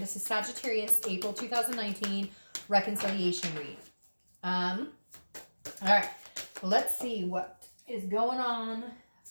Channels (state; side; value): inverted; both; correlation -1.00